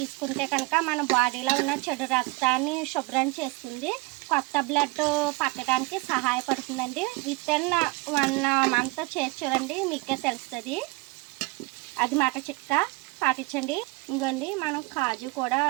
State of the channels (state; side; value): quieter; left; 25.2 dB